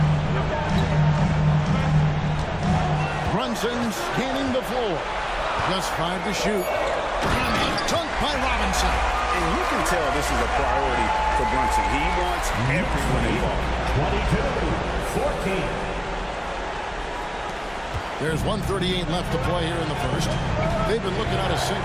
Brunson scanning the floor. Plus 5 to shoot. And dunked by Robinson. And you can tell this is a priority for Brunson. He wants everyone involved. 22 14. There's 1:38 left to play here in the first. They've been looking out of sync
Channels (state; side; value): identical; both; correlation 1.00